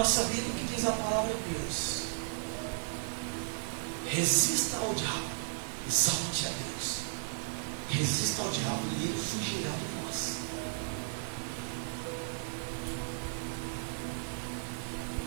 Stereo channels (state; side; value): silent; left; 55 dB below the other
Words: vida o que diz a palavra de Deus: resista ao diabo, exalte a Deus. Resista ao diabo e ele fugirá de nós.